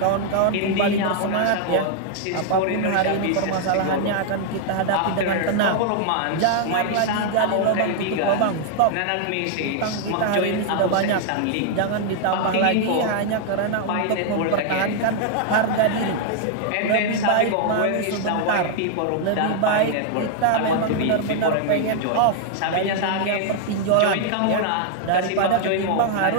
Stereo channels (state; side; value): different; both; correlation 0.00